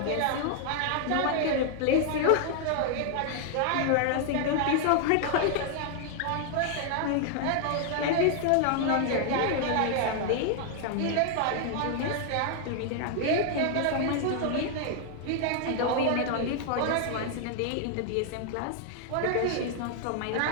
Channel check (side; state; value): both; different; correlation 0.00